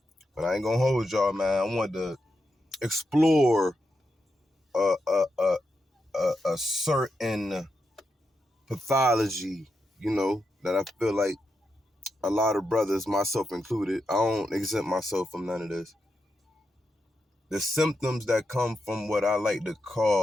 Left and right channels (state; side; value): normal; both; correlation 0.86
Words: But I ain't gonna hold y'all, man. I want to explore a certain pathology, that I feel like a lot of brothers, myself included, I don't exempt myself from none of this. The symptoms that come from what I like to